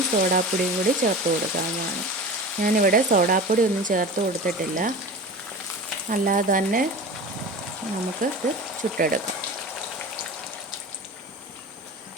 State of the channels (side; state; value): both; normal; correlation 0.33